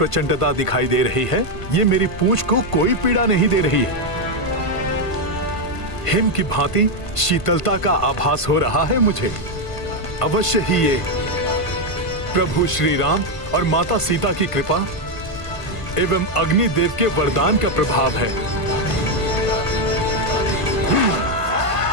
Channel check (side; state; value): right; late; 1.5 ms